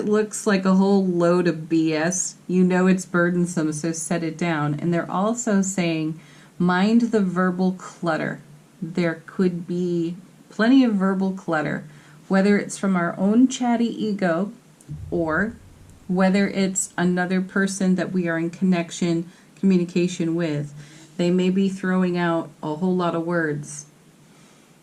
looks like a whole load of BS, you know it's burdensome, so set it down. And they're also saying mind the verbal clutter. There could be plenty of verbal clutter, whether it's from our own chatty ego or whether it's another person that we are in communication with. They may be throwing out a whole lot of words,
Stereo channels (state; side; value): identical; both; correlation 1.00